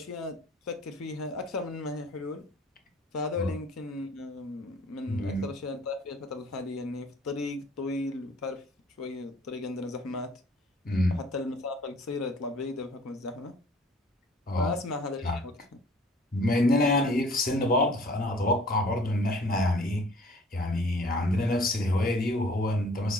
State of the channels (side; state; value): both; normal; correlation 0.53